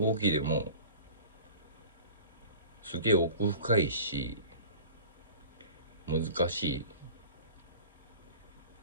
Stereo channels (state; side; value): inverted; both; correlation -0.40